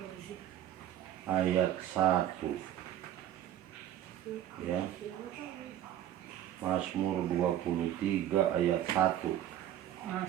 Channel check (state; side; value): quieter; left; 11.8 dB